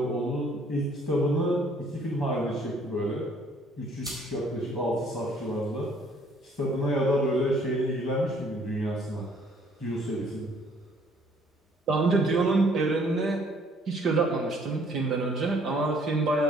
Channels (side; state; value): both; normal; correlation 0.61